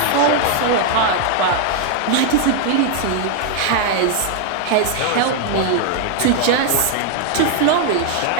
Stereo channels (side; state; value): both; different; correlation 0.00